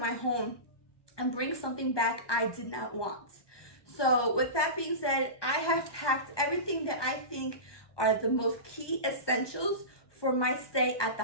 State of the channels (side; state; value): right; late; 1.2 ms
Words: home and bring something back I did not want. So with that being said, I have packed everything that I think are the most key essentials for my stay at the